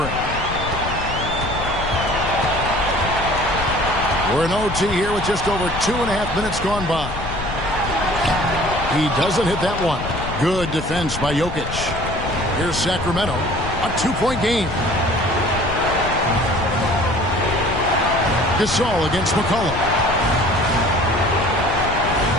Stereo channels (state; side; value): noise; left; rumble, 7 dB below the sound